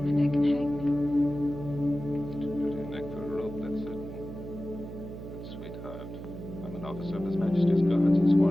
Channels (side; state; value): right; noise; hum, 10 dB below the sound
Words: my neck and hang me. Officer of His Majesty's Guards and